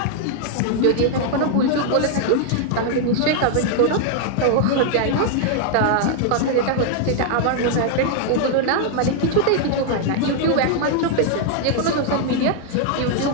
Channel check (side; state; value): both; different; correlation 0.00